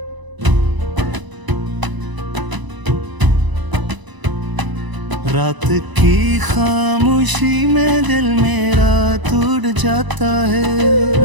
रात की खामोशी में दिल मेरा टूट जाता है।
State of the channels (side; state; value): left; late; 1.0 ms